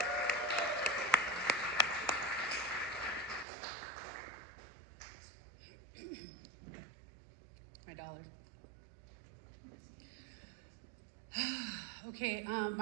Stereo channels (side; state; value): left; drops out; at 3.5 s